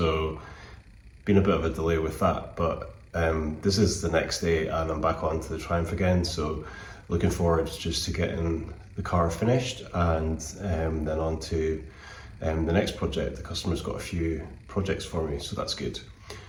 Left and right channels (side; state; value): both; identical; correlation 1.00